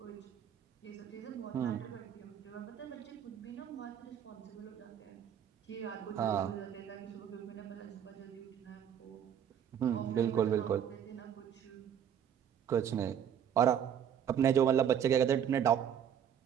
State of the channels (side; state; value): left; quieter; 9.0 dB